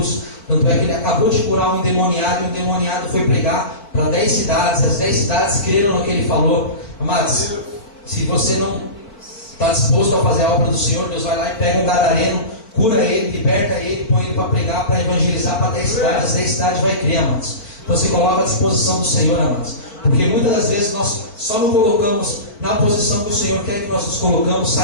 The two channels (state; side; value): late; right; 4.6 ms